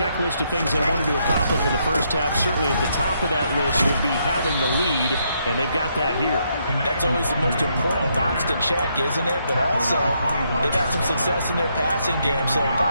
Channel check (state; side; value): inverted; both; correlation -0.76